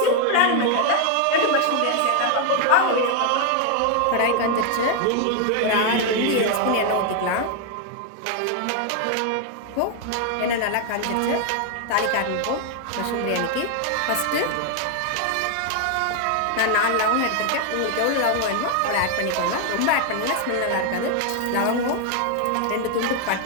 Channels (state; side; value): different; both; correlation 0.00